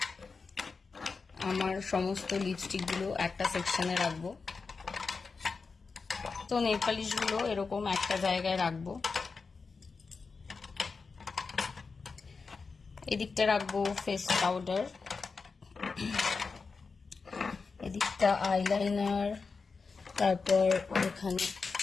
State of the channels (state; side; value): quieter; right; 4.7 dB